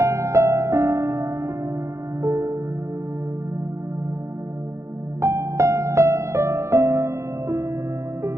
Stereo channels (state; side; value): late; left; 0.14 ms